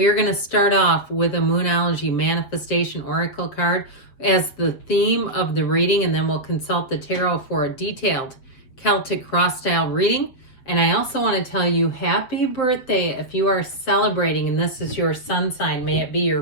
are going to start off with a Moonology Manifestation Oracle card as the theme of the reading, and then we'll consult the tarot for a detailed Celtic cross-style reading. And I also want to tell you happy birthday if you are celebrating and this is your sun sign. May it be your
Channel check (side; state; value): right; late; 7.8 ms